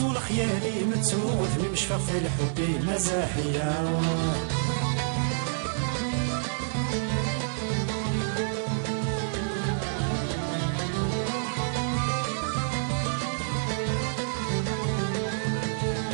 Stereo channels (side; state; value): left; silent; digital silence